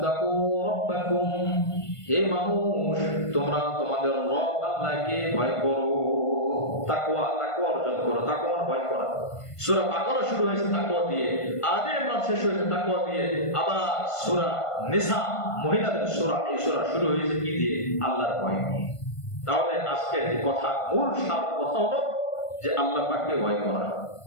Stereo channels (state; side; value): late; right; 1.5 ms